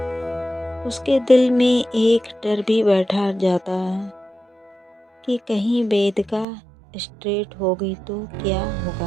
उसके दिल में एक डर भी बैठा जाता है कि कहीं वेदिका स्ट्रेट होगी तो क्या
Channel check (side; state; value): left; drops out; at 6.5 s